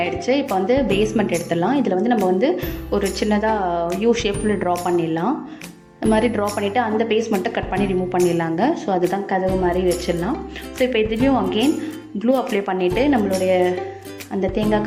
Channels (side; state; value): both; identical; correlation 1.00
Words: இப்போ வந்து பேஸ்மெண்ட் எடுத்துடலாம். இதில் வந்து நம்ம வந்து ஒரு சின்னதாக யூ ஷேப்பில் ட்ரா பண்ணிடலாம். இந்த மாதிரி ட்ரா பண்ணிவிட்டு அந்த பேஸ்மெண்ட்டை கட் பண்ணி ரிமூவ் பண்ணிடலாங்க. ஸோ அதுதான் கதவு மாதிரி வச்சிடலாம். ஸோ இப்போ இதுலேயும் அகெயின் க்ளூ அப்ளை பண்ணிவிட்டு நம்மளுடைய அந்த தேங்காய்